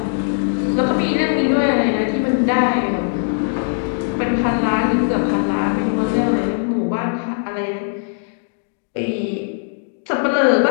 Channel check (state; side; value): silent; right; digital silence